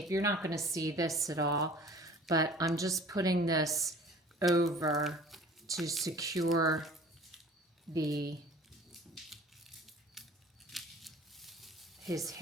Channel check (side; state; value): both; normal; correlation 0.46